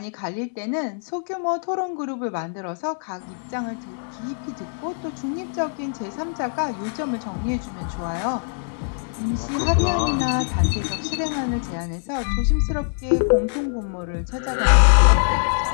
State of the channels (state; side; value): silent; right; 63 dB below the other